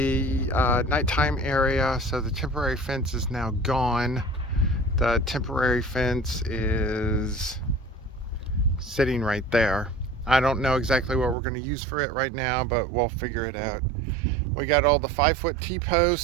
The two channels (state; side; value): drops out; left; at 11.4 s